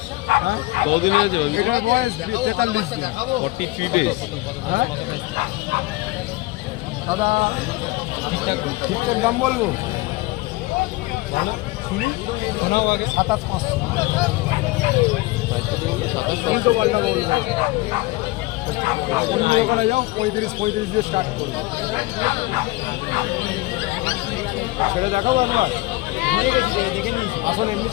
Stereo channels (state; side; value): quieter; right; 20.9 dB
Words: হ্যাঁ কতদিনে আছে? এটার বয়স 43 দিন। 43 days। হ্যাঁ দাদা ঠিকঠাক দাম বলবো? 27,500। তিনশো পাল্টা বলবো। অন্য দোকানে যাও 35 দিয়ে স্টার্ট করবো। ছেড়ে দেখাবো একবার? আসুন এমনি